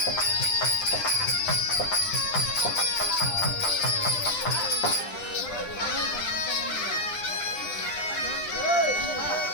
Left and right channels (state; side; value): late; right; 9.9 ms